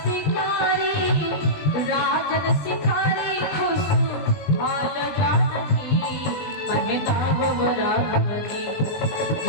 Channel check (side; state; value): right; late; 19 ms